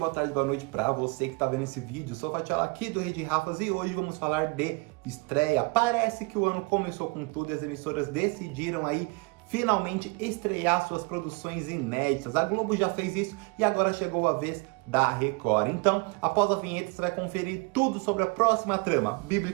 tarde, boa noite pra você que tá vendo esse vídeo. Sou o Fatiola aqui do Rede Rafas e hoje vamos falar de estreia. Parece que o ano começou com tudo e as emissoras decidiram aí finalmente estrear suas produções inéditas. A Globo já fez isso e agora chegou a vez da Record. Então, após a vinheta, você vai conferir tudo sobre a próxima trama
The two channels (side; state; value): left; quieter; 28.8 dB